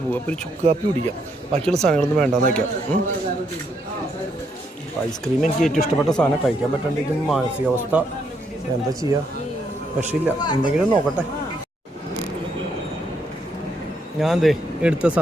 പോകും. അപ്പോൾ ഒരു ചുക്ക് കാപ്പി കുടിക്കാം. ബാക്കിയുള്ള സാധനങ്ങളൊന്നും വേണ്ടാന്ന് വയ്ക്കാം. ഐസ്ക്രീം എനിക്ക് ഏറ്റവും ഇഷ്ടപ്പെട്ട സാധനം. കഴിക്കാൻ പറ്റാണ്ടിരിക്കുന്ന മാനസികാവസ്ഥ എന്താ ചെയ്യുക? രക്ഷയില്ല. എന്തെങ്കിലും നോക്കട്ടെ. ഞാൻ എടുത്ത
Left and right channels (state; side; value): normal; both; correlation 0.74